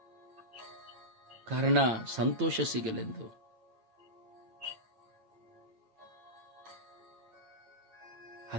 ಕಾರಣ ಸಂತೋಷ ಸಿಗಲೆಂದು.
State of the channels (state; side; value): late; left; 9.0 ms